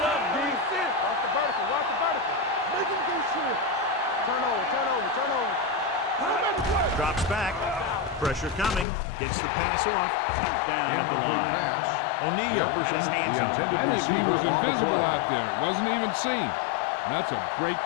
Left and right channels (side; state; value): right; drops out; at 8.8 s